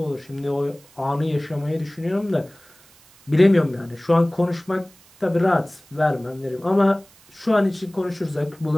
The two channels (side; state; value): right; noise; hiss, 28 dB below the sound